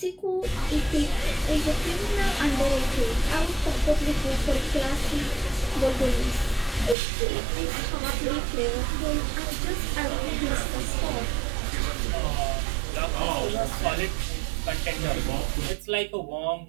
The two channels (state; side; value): drops out; left; at 7.0 s